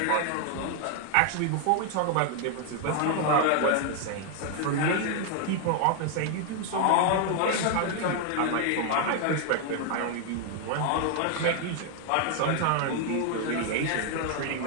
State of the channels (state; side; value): different; both; correlation 0.00